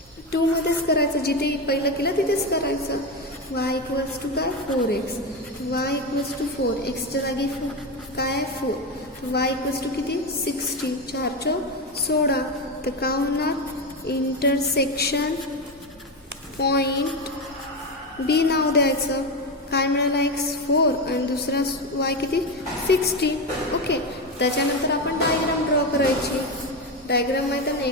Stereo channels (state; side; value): normal; both; correlation 0.15